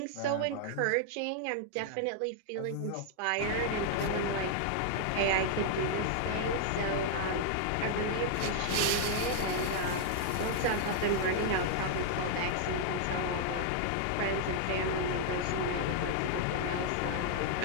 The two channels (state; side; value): different; both; correlation -0.01